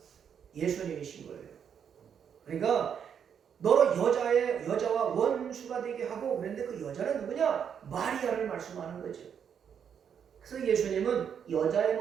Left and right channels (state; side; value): quieter; left; 7.8 dB